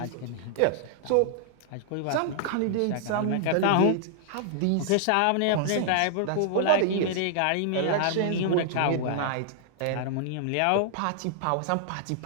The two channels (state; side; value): different; both; correlation -0.01